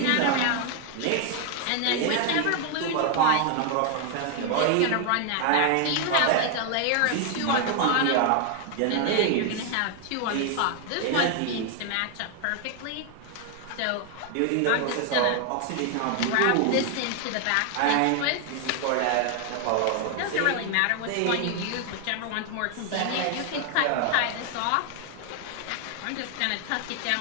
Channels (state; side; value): different; both; correlation 0.00